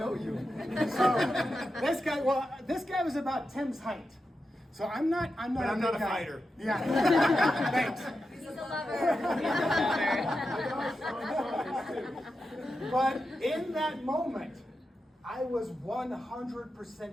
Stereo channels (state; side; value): normal; both; correlation 0.89